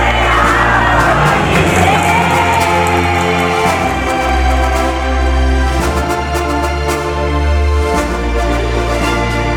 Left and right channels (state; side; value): identical; both; correlation 1.00